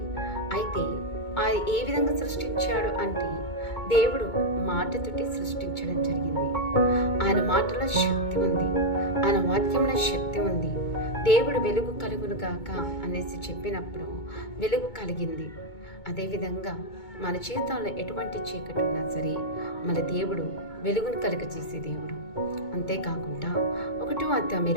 అయితే ఏ విధంగా సృష్టించాడు అంటే దేవుడు మాటతోటి సృష్టించడం జరిగింది. ఆయన మాటలో శక్తి ఉంది, ఆయన వాక్యంలో శక్తి ఉంది. దేవుడు వెలుగు కలుగును గాక అనేసి చెప్పినప్పుడు వెలుగు కలిగింది. అదేవిధంగా మన జీవితంలో ఎటువంటి చీకటి ఉన్నా సరే మన దేవుడు వెలుగును కలుగజేసే దేవుడు. అంతేకాకుండా 1వ అధ్యాయం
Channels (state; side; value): late; right; 2.2 ms